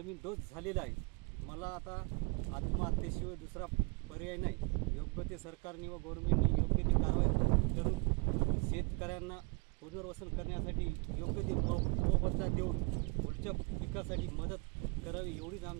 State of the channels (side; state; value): left; quieter; 31.2 dB